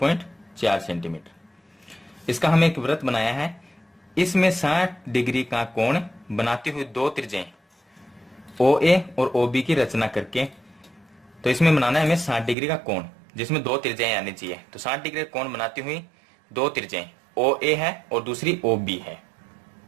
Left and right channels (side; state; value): left; drops out; at 12.6 s